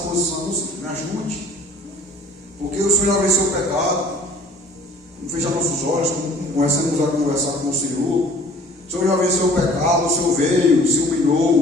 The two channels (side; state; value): both; normal; correlation 0.52